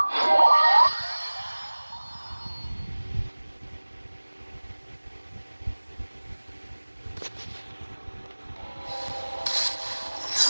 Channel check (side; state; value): both; inverted; correlation -1.00